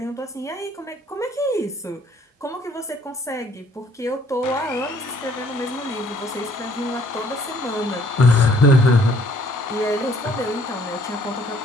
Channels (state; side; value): normal; both; correlation 0.61